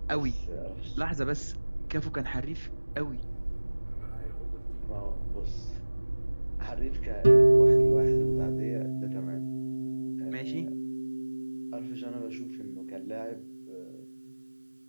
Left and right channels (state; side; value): inverted; both; correlation -1.00